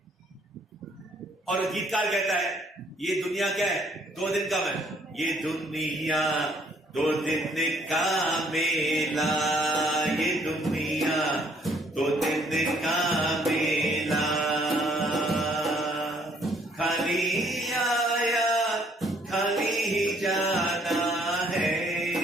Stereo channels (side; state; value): both; normal; correlation 0.64